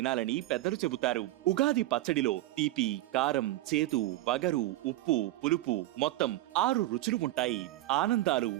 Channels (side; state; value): left; quieter; 16.3 dB